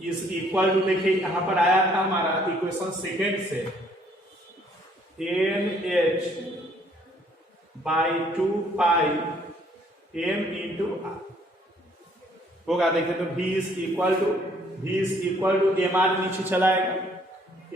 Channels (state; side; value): normal; both; correlation 0.63